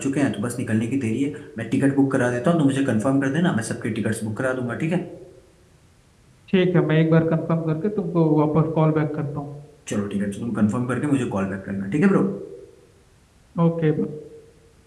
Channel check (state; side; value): identical; both; correlation 1.00